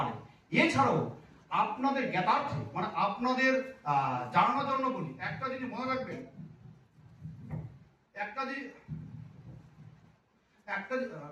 এছাড়াও আপনাদের জ্ঞাতার্থে মানে আপনাদের জানানোর জন্য বলি, একটা জিনিস মনে রাখবেন, একটা জিনিস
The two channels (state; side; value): identical; both; correlation 1.00